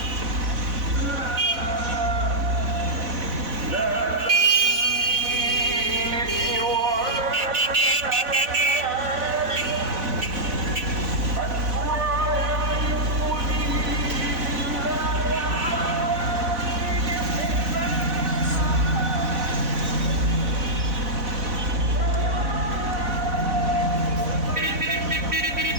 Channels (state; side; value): late; left; 4.0 ms